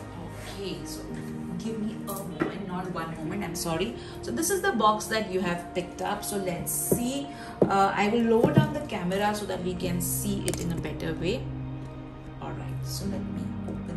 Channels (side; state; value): both; identical; correlation 1.00